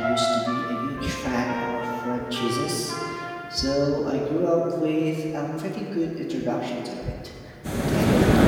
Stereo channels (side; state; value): both; identical; correlation 1.00